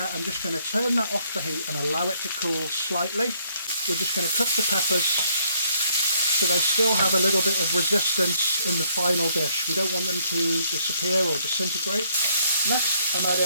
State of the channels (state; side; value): inverted; both; correlation -0.67